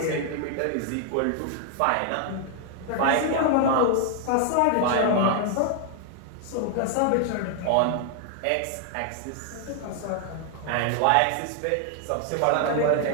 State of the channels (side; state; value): both; different; correlation 0.00